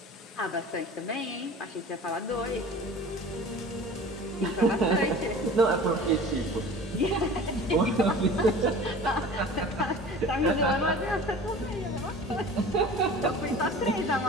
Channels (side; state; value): both; normal; correlation 0.40